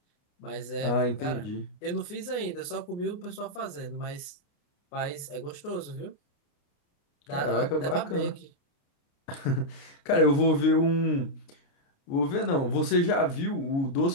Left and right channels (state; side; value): late; right; 29 ms